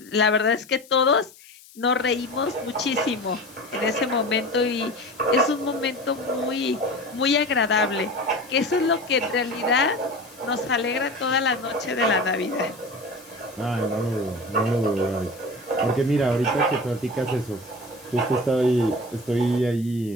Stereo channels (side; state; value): left; noise; hiss, 23 dB below the sound